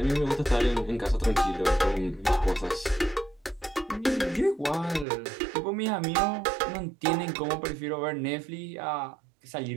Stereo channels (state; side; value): drops out; left; at 5.1 s